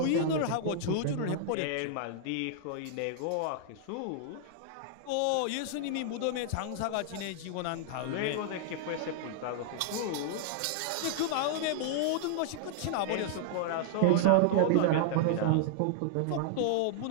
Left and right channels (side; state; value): both; different; correlation -0.01